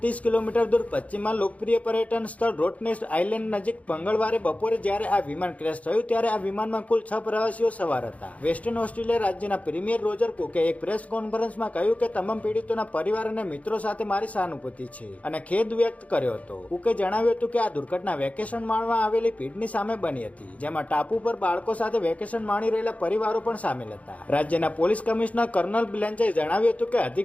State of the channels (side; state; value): right; late; 0.068 ms